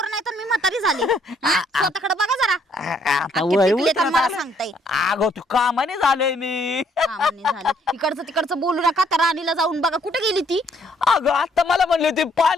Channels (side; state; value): both; normal; correlation 0.67